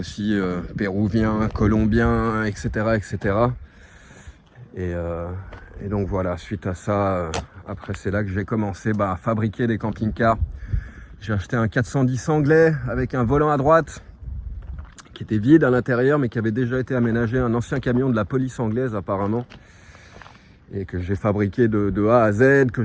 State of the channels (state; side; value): identical; both; correlation 1.00